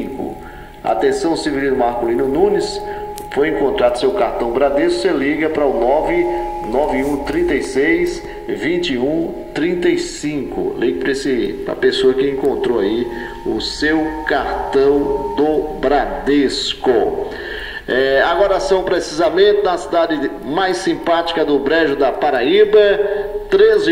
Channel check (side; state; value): both; identical; correlation 1.00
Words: Atenção, Severino Marculino Nunes, foi encontrado seu cartão Bradesco, você liga para o 99136-2135. Ligue para a pessoa que encontrou aí o seu cartão do Bradesco. Agora são precisamente na cidade mais simpática do Brejo da Paraíba,